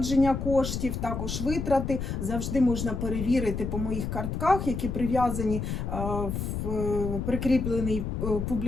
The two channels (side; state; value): left; noise; rumble, 3 dB below the sound